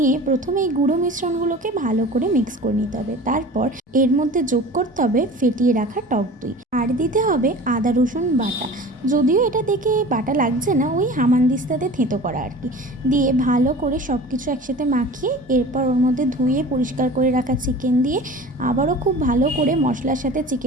প্রথমে এই গুঁড়ো মিশ্রণগুলোকে ভালো করে মিক্স করে নিতে হবে। তারপর এর মধ্যে যোগ করতে হবে ফেটিয়ে রাখা টক দই, আর দিতে হবে আদা রসুন বাটা। যদিও এটা দেখে বাটা লাগছে না, ওই হামানদিস্তাতে থেঁতো করা আর কি। দিয়ে ভালো করে সব কিছু একসাথে মাখিয়ে এরপর ওর মধ্যে ধুয়ে পরিষ্কার করে রাখা চিকেন দিয়ে আবারও খুব ভালো করে মশলার সাথে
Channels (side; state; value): both; normal; correlation 0.39